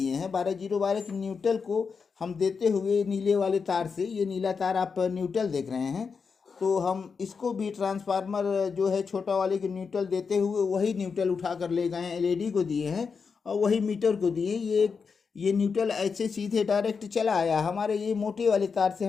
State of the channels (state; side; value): quieter; right; 5.5 dB